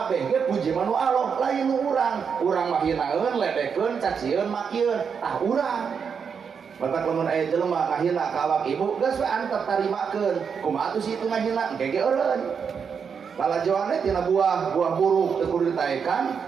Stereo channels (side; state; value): left; quieter; 6.5 dB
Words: ge puji mah nu Allah lain nu urang. Urang mah hinaeun, ledekeun, cacieun, makieun. Tah urang batak lamun aya jelema ngahina ka awak ibu geus we antep tarimakeun. Kumaha atuh situ ngahina engke ge eureun. Palajoannya tina buah buruk teu kudu